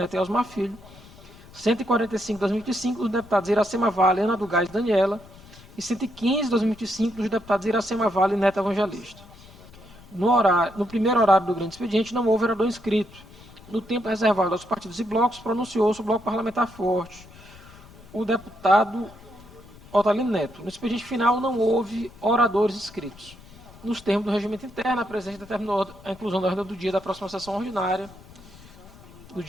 e Osmar Filho, 145/2025 dos deputados Iracema Vale, Ana do Gás e Daniela, e 115/2025 dos deputados Iracema Vale e Neto Evangelista. No primeiro horário do grande expediente, não houve vereador inscrito. No tempo reservado aos partidos e blocos, pronunciou-se o bloco parlamentar forte, o deputado Otalino Neto. No expediente final, não houve oradores inscritos. Nos termos do regimento interno, a presidente determinou a inclusão da ordem do dia da próxima sessão ordinária, no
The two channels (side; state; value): left; noise; rumble, 21 dB below the sound